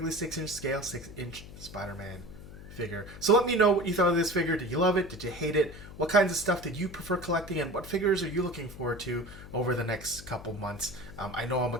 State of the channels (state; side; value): noise; left; hum, 15 dB below the sound